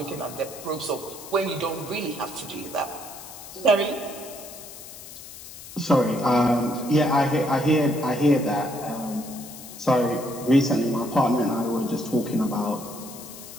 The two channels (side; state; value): left; noise; hiss, 14 dB below the sound